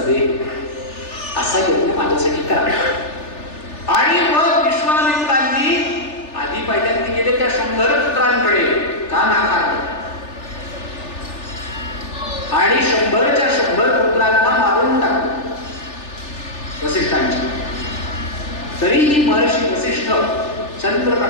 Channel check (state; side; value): late; right; 3.4 ms